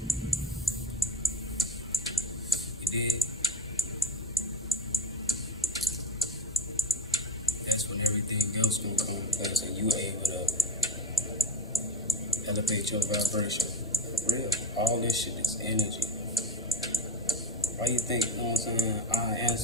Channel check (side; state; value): both; normal; correlation 0.29